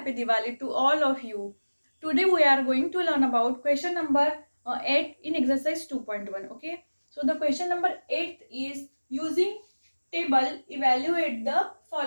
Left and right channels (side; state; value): both; inverted; correlation -1.00